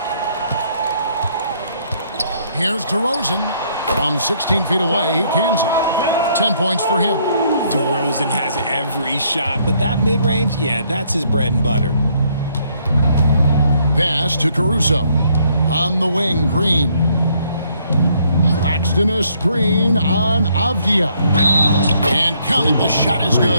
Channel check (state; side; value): inverted; both; correlation -0.68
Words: Here's DeRozan. From 16 feet away, he cans it. 10 points for him. DeRozan has every shot, but that mid-range, yeah, that's his bread and butter. Pass to Caruso. On the wing, Green. Claxton a screen on Avdia. And count it, the shot is